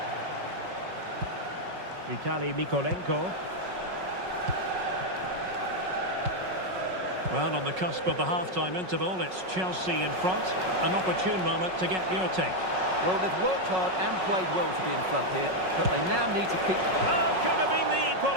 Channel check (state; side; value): late; left; 5.4 ms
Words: Mikolenko. Well, on the cusp of the half-time interval, it's Chelsea in front. An opportune moment to get your take. Well, they've worked hard and played well to be in front here, but they now need to keep... Oh, could have been the